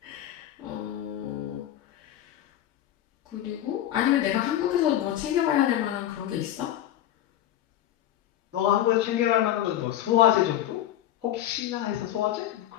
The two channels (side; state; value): right; quieter; 12.3 dB